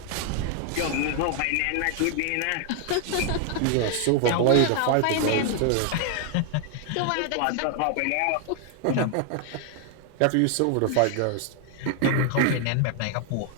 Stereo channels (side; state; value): both; different; correlation 0.00